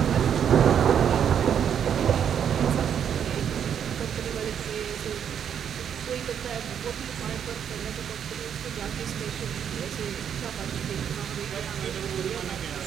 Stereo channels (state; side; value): quieter; left; 8.5 dB